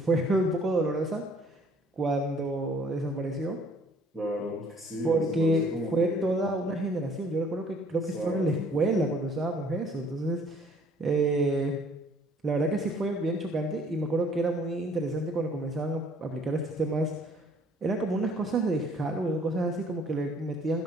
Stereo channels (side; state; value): both; normal; correlation 0.58